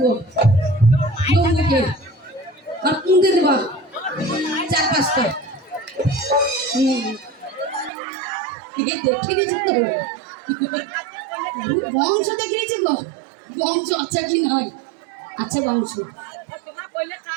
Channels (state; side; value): drops out; left; at 7.9 s